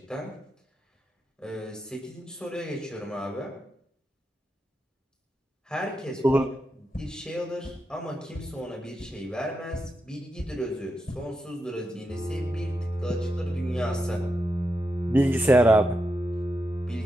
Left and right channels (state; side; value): normal; both; correlation 0.86